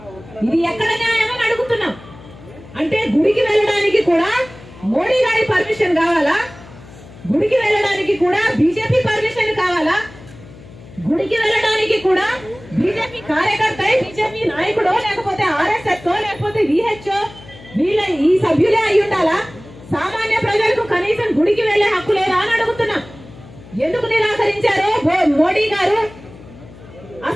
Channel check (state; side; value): noise; left; hum, 19 dB below the sound